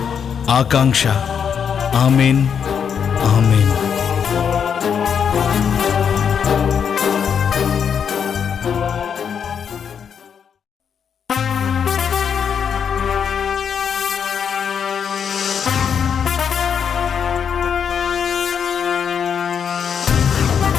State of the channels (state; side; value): quieter; right; 7.4 dB